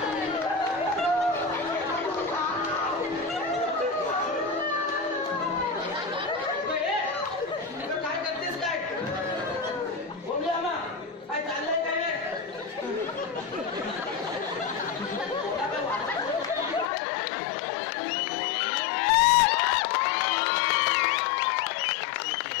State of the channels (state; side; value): drops out; right; at 16.9 s